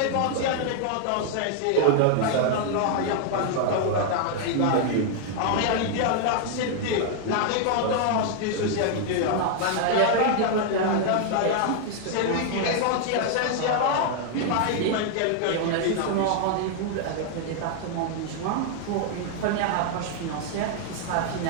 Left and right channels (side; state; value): both; different; correlation 0.00